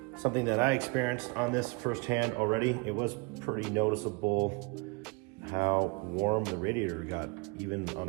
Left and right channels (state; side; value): quieter; left; 28.3 dB